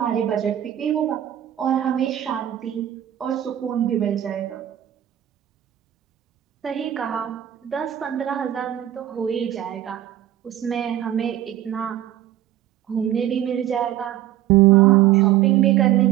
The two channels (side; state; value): left; quieter; 12.3 dB